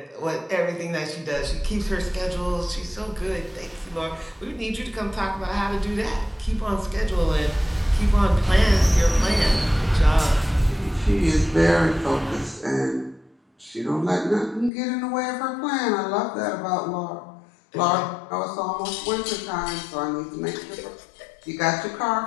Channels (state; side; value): drops out; right; at 14.7 s